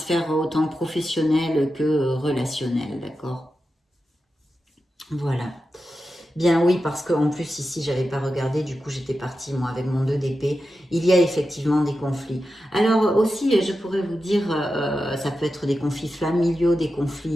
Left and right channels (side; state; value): both; normal; correlation 0.91